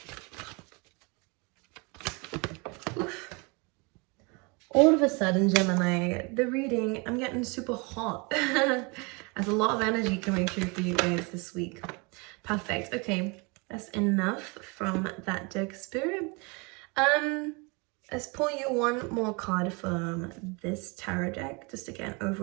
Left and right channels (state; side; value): quieter; left; 29.6 dB